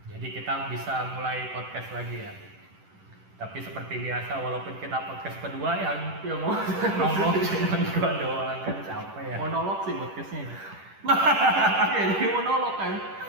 Jadi kita bisa mulai podcast lagi ya. Tapi seperti biasa, walaupun kita podcast kedua yang mau ngomong cuma gua doang kan capek ya. Monolog sih podcastnya. Iya, jadi monolog kan.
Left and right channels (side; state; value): left; late; 10 ms